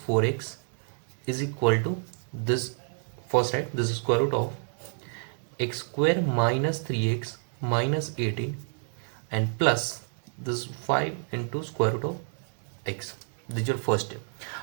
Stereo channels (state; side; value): silent; left; digital silence